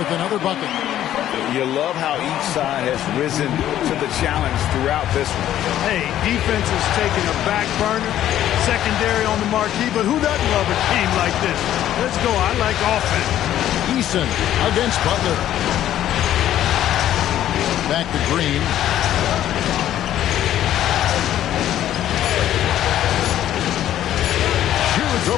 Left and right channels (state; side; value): quieter; right; 12.0 dB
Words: another bucket. You love how each side has risen to the challenge throughout this one. Hey, defense is taking a back burner, secondary on the marquee, but who doesn't love a game like this? Let's go. I like offense. Eason against Butler. Back to Green. Shoots